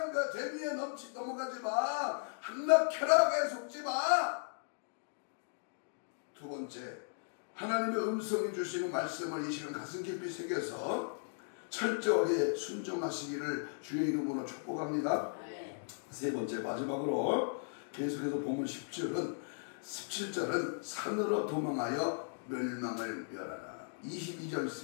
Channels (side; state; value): right; silent; digital silence